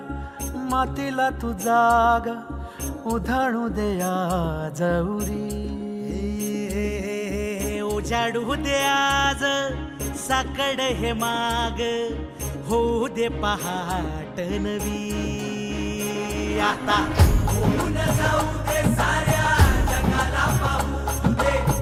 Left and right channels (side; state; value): both; identical; correlation 1.00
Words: मातीला तू जाग उधाणू दे आज उरी. उजाडू दे आज साकड हे माग होऊ दे पहाट नवी. आता होऊन जाऊ दे साऱ्या जगाला पाहू दे